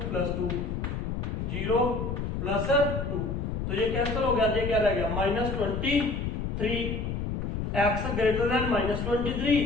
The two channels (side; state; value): left; noise; rumble, 3 dB below the sound